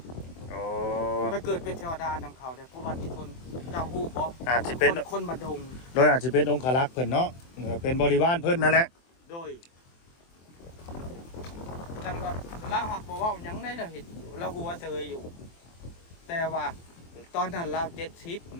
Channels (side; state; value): right; late; 23 ms